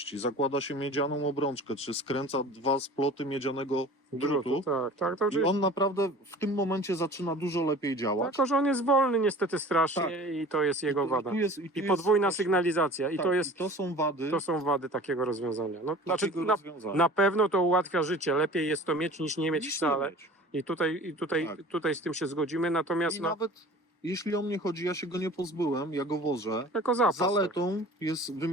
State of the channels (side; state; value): both; normal; correlation 0.42